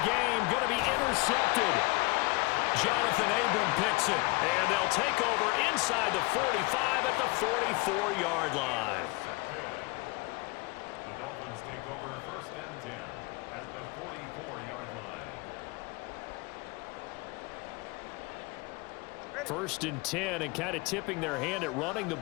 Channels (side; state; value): right; quieter; 25.4 dB